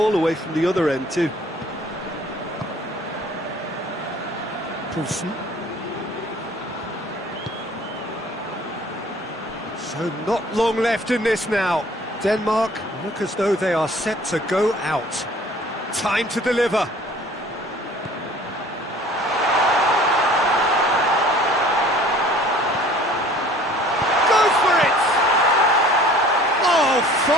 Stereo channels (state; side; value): normal; both; correlation 0.51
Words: away from the other end too. Poulsen. So not long left in this now. Denmark look as though they are set to go out. Time to deliver. Goes for it! Oh,